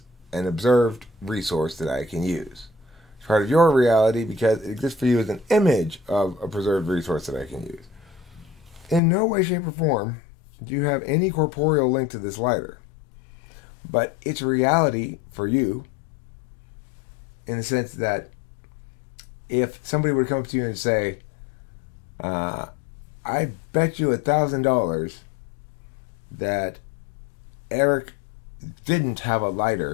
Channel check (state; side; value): drops out; right; at 9.0 s